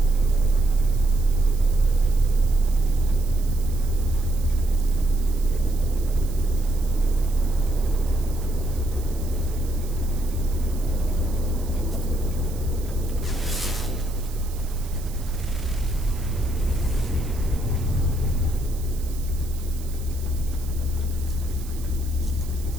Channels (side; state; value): right; noise; hiss, 18 dB below the sound